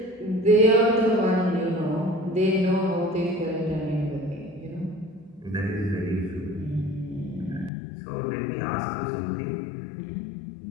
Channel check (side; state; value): right; drops out; at 7.7 s